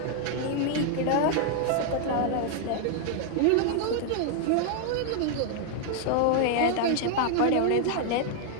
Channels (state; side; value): different; both; correlation 0.00